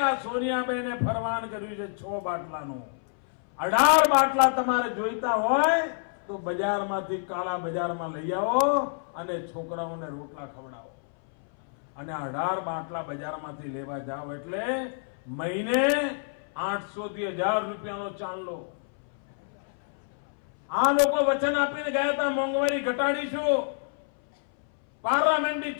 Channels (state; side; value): silent; right; 59 dB below the other